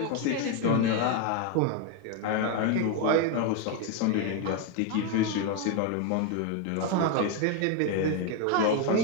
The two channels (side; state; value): both; different; correlation 0.01